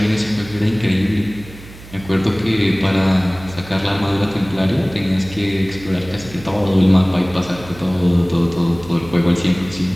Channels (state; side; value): noise; right; hum, 18 dB below the sound